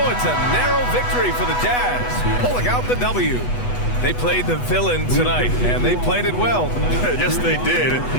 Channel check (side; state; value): right; late; 8.1 ms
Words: it's a narrow victory for the Jazz, pulling out the W. They played the villain tonight, and they played it well. Yes, they did.